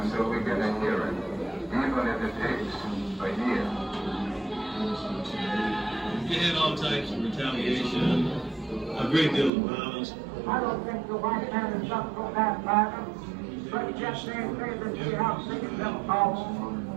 we get a hearing, even if it takes a year. We had all types of retaliation, a great deal of violence. I don't think the white man is up for that matter, but just they see how sick it them.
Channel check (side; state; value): left; drops out; at 9.5 s